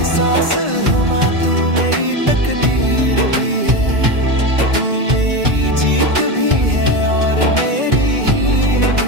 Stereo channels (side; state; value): left; late; 1.9 ms